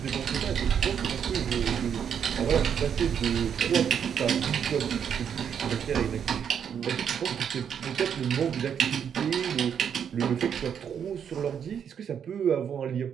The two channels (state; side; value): quieter; left; 8.0 dB